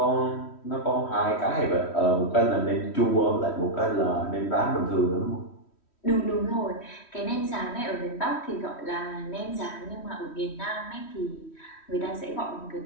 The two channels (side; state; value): right; late; 3.1 ms